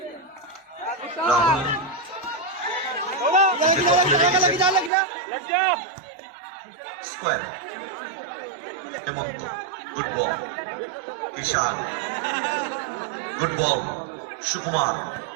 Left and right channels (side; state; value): left; drops out; at 4.9 s